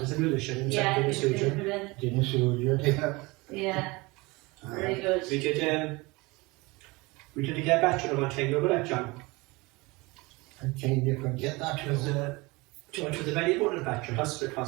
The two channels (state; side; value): quieter; left; 24.1 dB